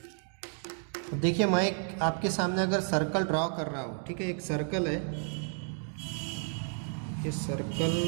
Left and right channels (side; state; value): left; silent; 57 dB below the other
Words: देखिए मैं एक आपके सामने अगर सर्कल ड्रॉ कर रहा हूँ, ठीक है, एक सर्कल है, ये सर्कल